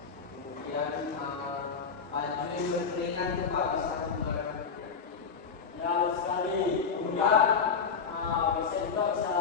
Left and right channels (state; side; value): quieter; right; 5.9 dB